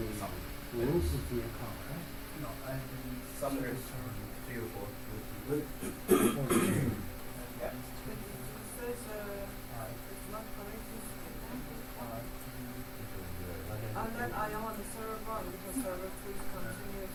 rules of the account, right? No, I didn't. Somewhere 3 or 4. Yeah. And then I am on the server 1 because server 2 is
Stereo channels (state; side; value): identical; both; correlation 1.00